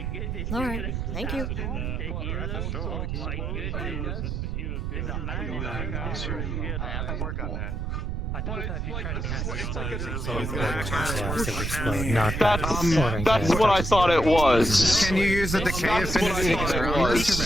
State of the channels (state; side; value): noise; right; rumble, 2 dB below the sound